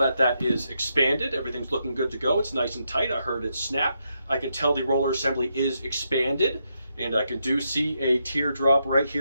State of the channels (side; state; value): both; inverted; correlation -0.81